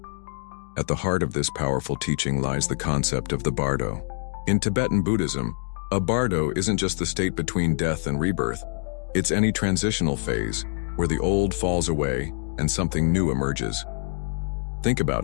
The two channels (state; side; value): silent; right; 57 dB below the other